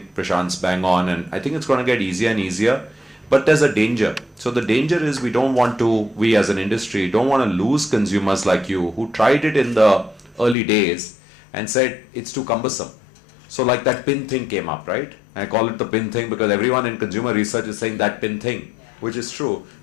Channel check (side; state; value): right; drops out; at 10.6 s